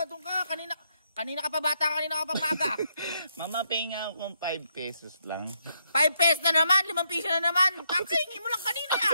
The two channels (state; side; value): inverted; both; correlation -0.76